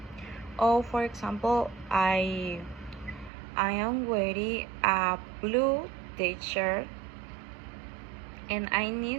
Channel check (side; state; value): left; drops out; at 3.3 s